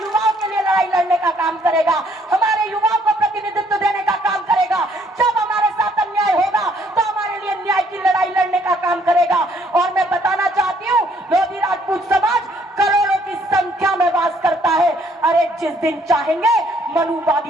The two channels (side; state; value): both; normal; correlation 0.65